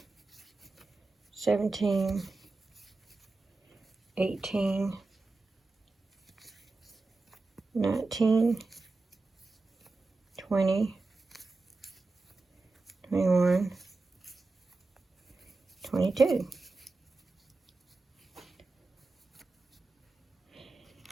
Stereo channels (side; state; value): left; quieter; 3.5 dB